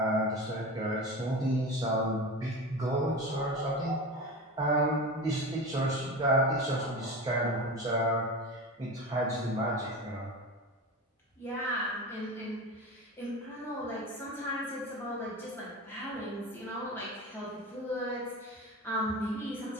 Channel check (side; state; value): both; normal; correlation 0.28